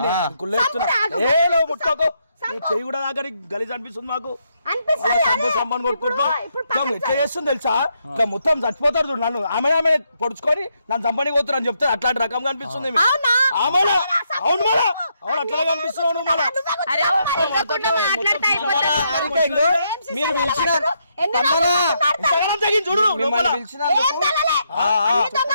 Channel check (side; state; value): both; inverted; correlation -0.78